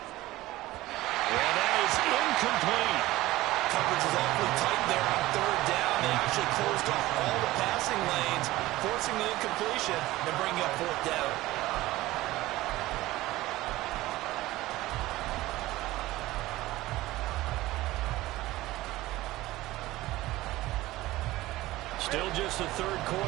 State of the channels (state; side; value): quieter; left; 17.6 dB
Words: that is incomplete. Coverage is awfully tight there on third down. They actually closed off all the passing lanes, forcing the incompletion and bringing up fourth down. Still just the third